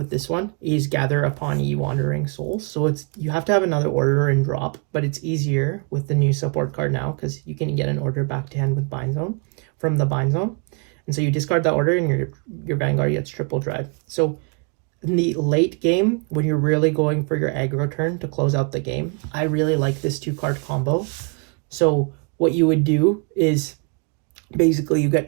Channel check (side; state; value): left; quieter; 35.0 dB